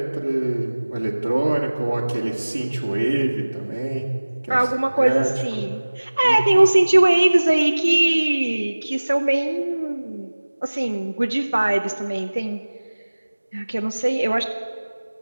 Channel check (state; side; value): inverted; both; correlation -1.00